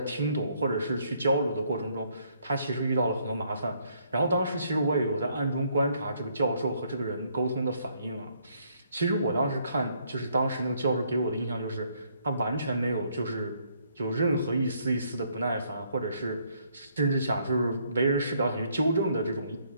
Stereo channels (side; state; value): both; inverted; correlation -0.69